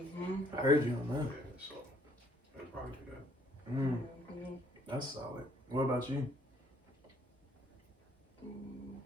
I heard you on that. Yeah, so they probably do that. That's solid. What about you?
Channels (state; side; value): normal; both; correlation 0.64